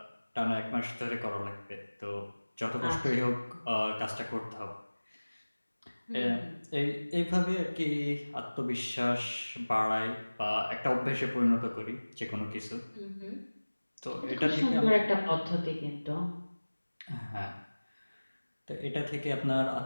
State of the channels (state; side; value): inverted; both; correlation -1.00